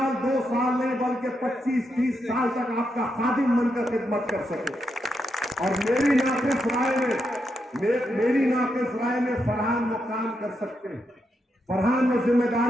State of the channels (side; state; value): both; normal; correlation 0.83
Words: 2 साल नहीं बल्कि 25-30 साल तक आपका खादिम बनकर खिदमत कर सके। और मेरी नाकिस राय में फरहान वो काम कर सकते हैं, फरहान वो